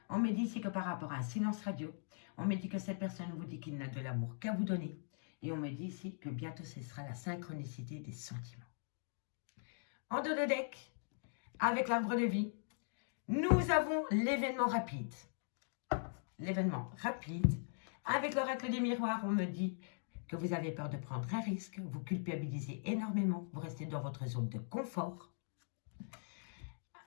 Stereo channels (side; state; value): right; silent; digital silence